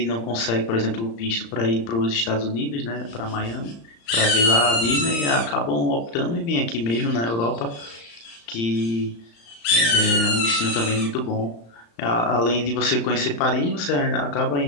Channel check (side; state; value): right; late; 35 ms